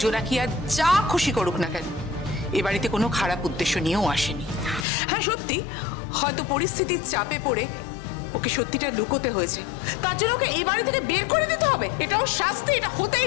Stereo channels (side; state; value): right; drops out; at 4.9 s